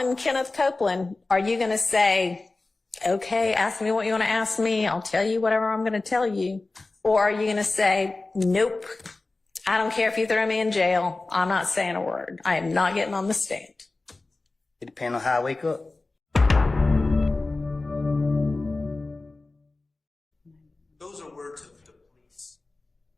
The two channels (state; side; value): quieter; right; 3.3 dB